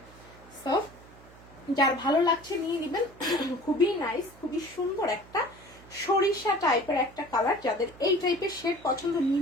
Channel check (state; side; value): noise; right; hum, 22 dB below the sound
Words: সো যার ভালো লাগছে নিয়ে নিবেন। খুবই নাইস, খুবই সুন্দর একটা সরিষা টাইপের একটা কালার, যাদের এই টাইপের শেড পছন্দ নিয়ে